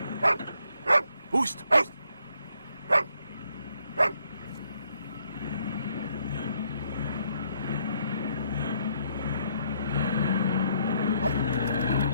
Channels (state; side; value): inverted; both; correlation -0.72